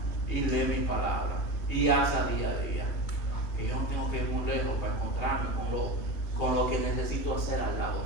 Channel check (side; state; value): right; late; 3.1 ms